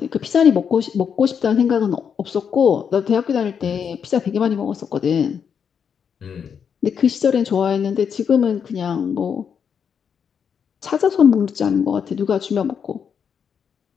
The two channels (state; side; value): quieter; right; 7.2 dB